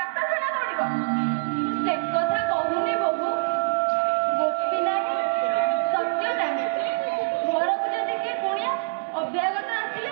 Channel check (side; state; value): left; silent; 60 dB below the other